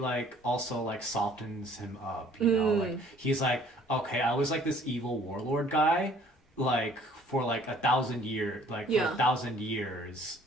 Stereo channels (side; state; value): both; normal; correlation 0.56